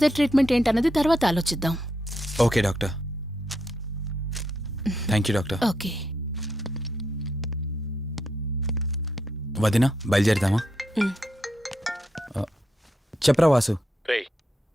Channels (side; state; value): both; normal; correlation 0.81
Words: ట్రీట్మెంట్ ఏంటన్నది తర్వాత ఆలోచిద్దాం. Okay doctor. Thank you doctor. Okay. వదినా, బయలుదేరదామా? చెప్పరా వాసు. రే,